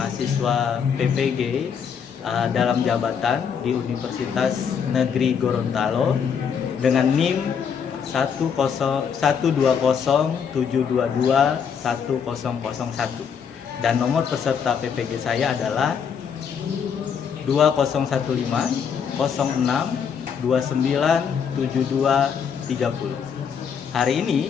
PPG dalam jabatan di Universitas Negeri Gorontalo dengan NIM 120722101 dan nomor peserta PPG saya adalah 2015 06 297230. Hari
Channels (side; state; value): right; quieter; 7.1 dB